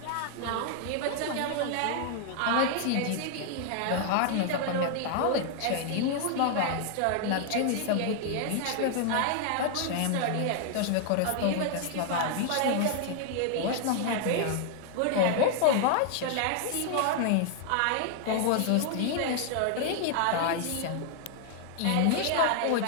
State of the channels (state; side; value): different; both; correlation 0.00